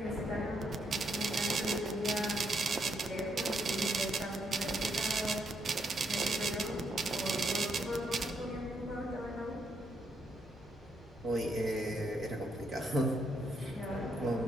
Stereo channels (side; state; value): both; normal; correlation 0.76